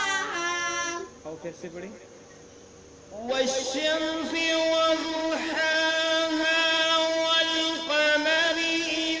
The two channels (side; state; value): both; identical; correlation 1.00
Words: और फिर से पढ़ी। वश्शम्सि वज़ुहाहा वल्क़मरि